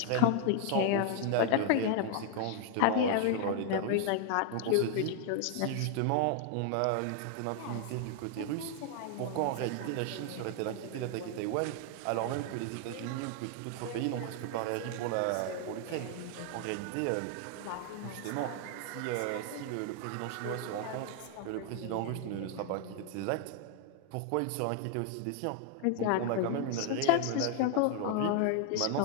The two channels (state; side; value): different; both; correlation 0.00